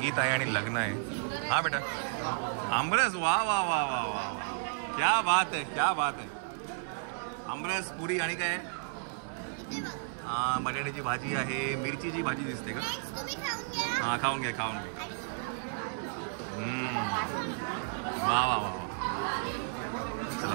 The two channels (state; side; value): silent; left; 56 dB below the other